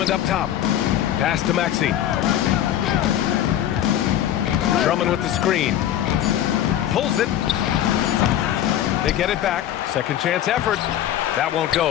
up top. Pass to Maxey. Drummond with the screen. Pulls it. They get it back. Second chance effort. That won't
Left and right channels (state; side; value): quieter; right; 11.5 dB